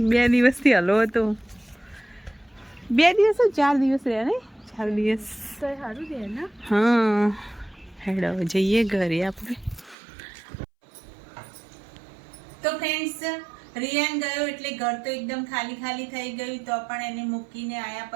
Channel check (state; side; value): drops out; left; at 10.0 s